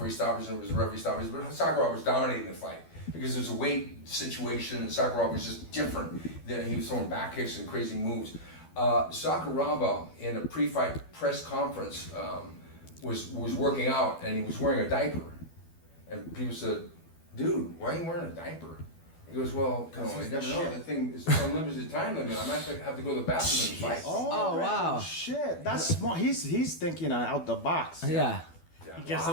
stoppage, and it was referee stoppage, but Sakuraba was dominating the fight because it was a weight situation, and Sakuraba was just different. He was throwing back kicks and crazy moves. Sakuraba, in a pre-fight press conference, was working out, and he was wearing a diaper, and people said, "Dude, why are you wearing a diaper?" He goes, "Well, you never know. The thing is unlimited time limit. I might have to go to the bathroom and fight." Oh, wow. Shit, that's smart. He's thinking out the box. Yeah. You get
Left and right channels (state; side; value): late; right; 12 ms